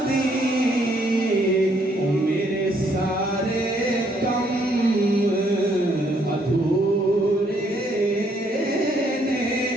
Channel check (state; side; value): normal; both; correlation 0.69